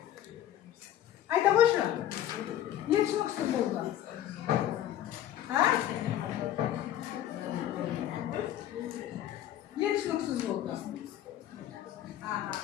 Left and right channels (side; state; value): right; quieter; 11.9 dB